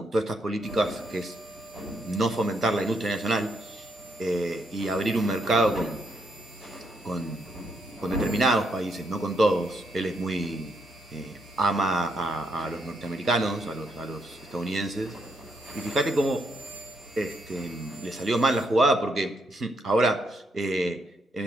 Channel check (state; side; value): normal; both; correlation 0.76